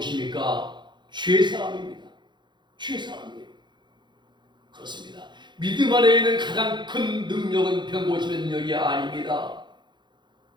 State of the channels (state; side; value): late; left; 0.22 ms